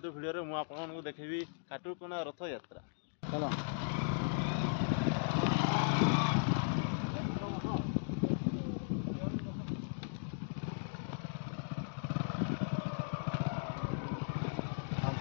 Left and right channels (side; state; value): right; silent; digital silence